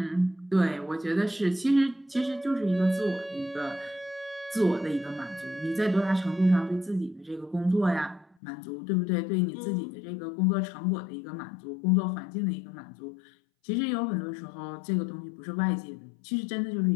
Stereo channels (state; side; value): drops out; right; at 8.3 s